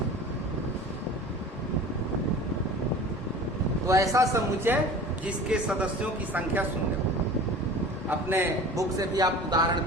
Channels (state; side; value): normal; both; correlation 0.40